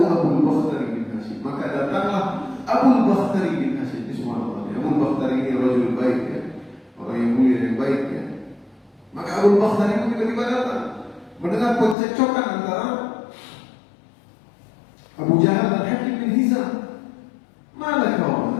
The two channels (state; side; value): drops out; right; at 12.0 s